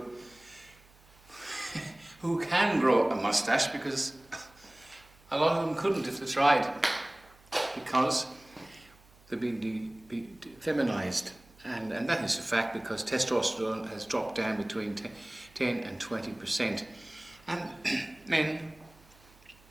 can grow a mustache, because a lot of them couldn't if they tried, because they've been feminized. And that is a fact, because testosterone has dropped down between 10 and 20%. And men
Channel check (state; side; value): noise; right; hum, 27 dB below the sound